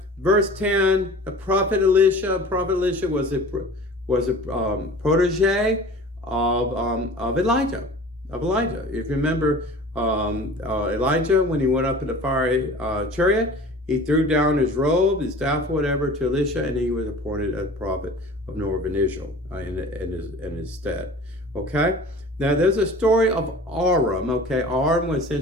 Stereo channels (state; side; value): normal; both; correlation 0.41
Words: verse 10, the prophet Elisha was a protege of Elijah. If you remember, Elijah, when he went up in the fiery chariot, he threw down his robe, his staff, whatever, to Elisha, and he was appointed as prophet of Northern Israel in his stead. Okay? Now, there's a story of Aram. Okay? Aram was